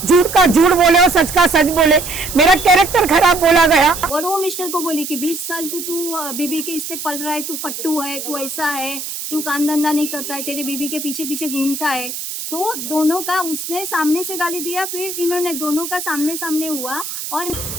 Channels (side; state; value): right; noise; hiss, 7 dB below the sound